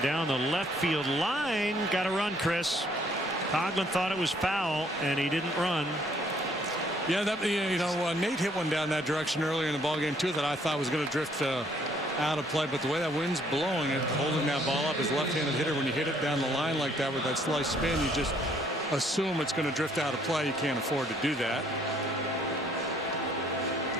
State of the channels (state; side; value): normal; both; correlation 0.64